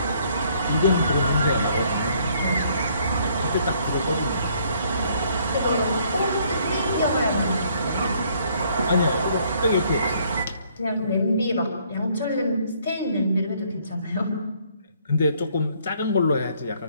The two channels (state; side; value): inverted; both; correlation -0.65